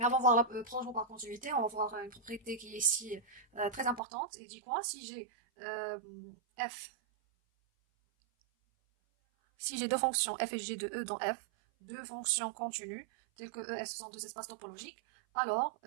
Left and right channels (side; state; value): left; drops out; at 4.0 s